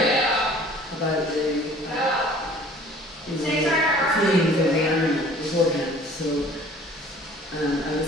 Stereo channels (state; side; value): normal; both; correlation 0.50